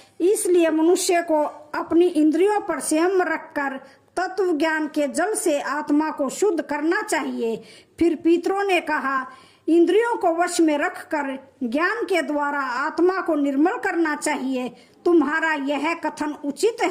इसलिए मनुष्य को अपनी इंद्रियों पर संयम रखकर तत्व ज्ञान के जल से आत्मा को शुद्ध करना चाहिए। फिर पितरों ने कहा, इंद्रियों को वश में रखकर ज्ञान के द्वारा आत्मा को निर्मल करना चाहिए। तुम्हारा यह कथन उचित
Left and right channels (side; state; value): both; identical; correlation 1.00